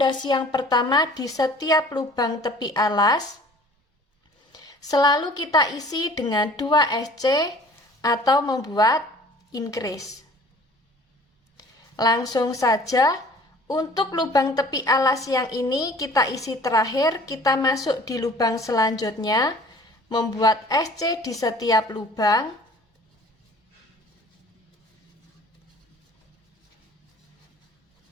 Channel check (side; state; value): both; normal; correlation 0.49